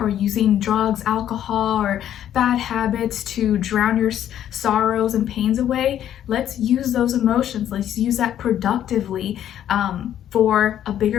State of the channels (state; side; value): quieter; right; 10.8 dB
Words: using drugs, alcohol, or bad habits to drown your sorrows and pains away, let's use those emotions. Let's use that productively for a